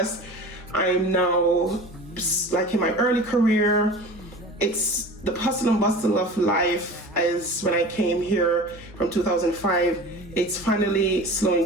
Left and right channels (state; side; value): normal; both; correlation 0.37